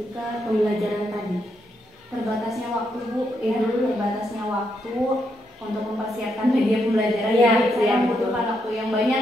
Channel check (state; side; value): normal; both; correlation 0.79